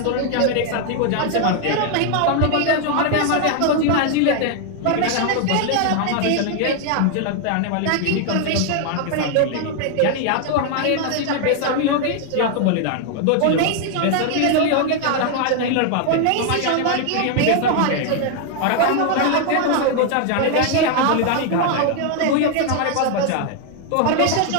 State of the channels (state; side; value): different; both; correlation 0.00